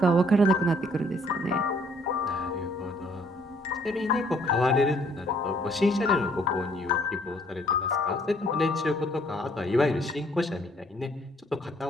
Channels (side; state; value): both; normal; correlation 0.63